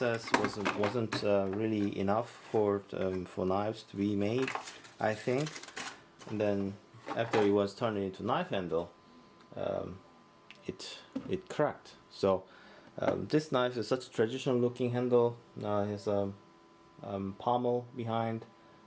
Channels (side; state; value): both; identical; correlation 1.00